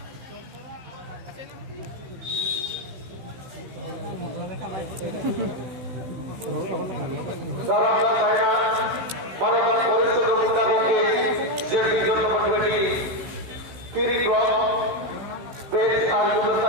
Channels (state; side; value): late; left; 16 ms